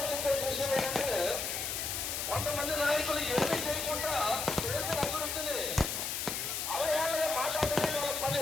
విషయం ఏంటంటే కొంతమంది నాయకులు ఏమీ చేయకుండా చేసిన అభివృద్ధిని అవయాలుగా మాట్లాడమే వాళ్ళ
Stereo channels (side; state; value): left; noise; hiss, 2 dB below the sound